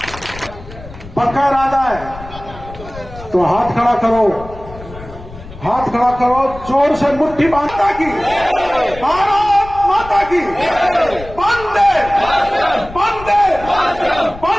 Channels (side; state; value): left; noise; rumble, 15 dB below the sound